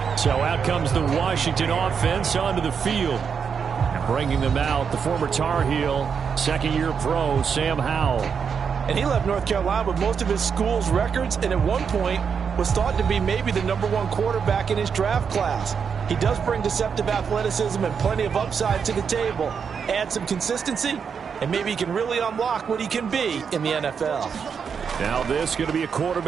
So out comes the Washington offense onto the field. And bringing them out, the former Tar Heel, second-year pro, Sam Howell. And he left North Carolina with most of his school's records, and at one point was thought to be maybe the #1 quarterback in his draft class. He does bring deceptive athleticism and plenty of upside to the table. Add some consistency, and maybe he can really unlock what he can be in the NFL. Now this is going to be a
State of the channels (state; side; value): quieter; left; 6.5 dB